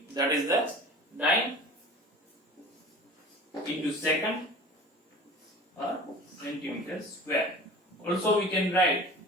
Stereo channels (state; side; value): normal; both; correlation 0.40